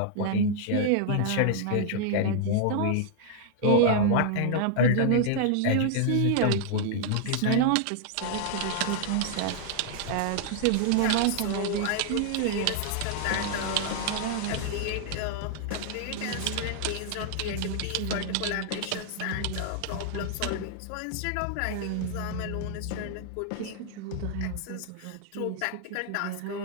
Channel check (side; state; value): both; different; correlation 0.00